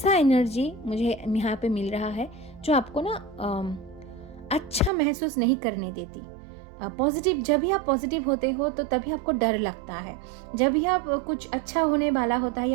एनर्जी मुझे यहाँ पे मिल रहा है जो आपको ना अच्छा महसूस नहीं करने देती। पॉजिटिव, जब भी आप पॉजिटिव होते हो तो तभी आपको डर लगता है। जब भी आप कुछ अच्छा होने वाला होता है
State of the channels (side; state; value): left; drops out; at 4.9 s